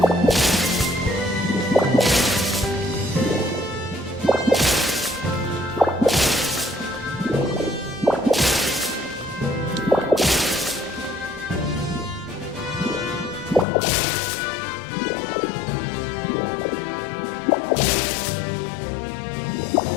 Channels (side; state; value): right; drops out; at 13.7 s